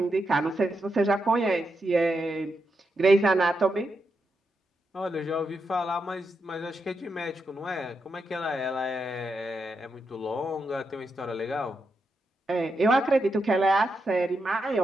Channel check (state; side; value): normal; both; correlation 0.84